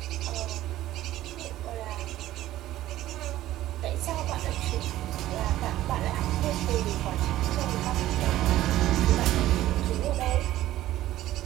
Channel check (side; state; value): left; quieter; 14.5 dB